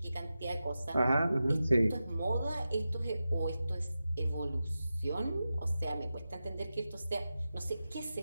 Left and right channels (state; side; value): inverted; both; correlation -0.92